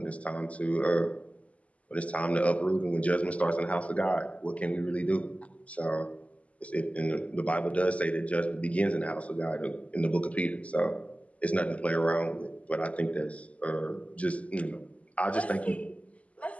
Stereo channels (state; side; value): late; right; 0.067 ms